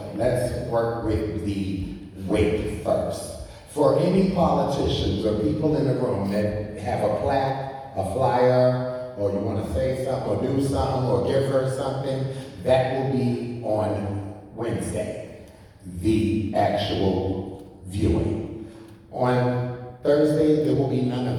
let's work with the weight first. For any politicians or people in the room that have a plaque, a flyer, or you want to say something or do something or give her something, that will be on Wednesday, the actual viewing. On Thursday, there will be none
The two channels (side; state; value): both; identical; correlation 1.00